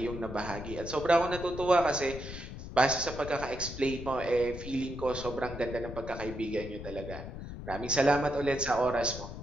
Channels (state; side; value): noise; left; rumble, 10 dB below the sound